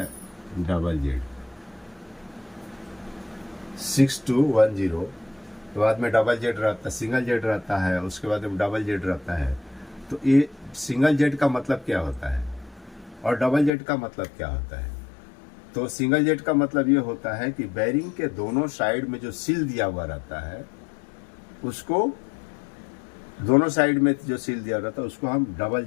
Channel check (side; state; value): right; drops out; at 13.7 s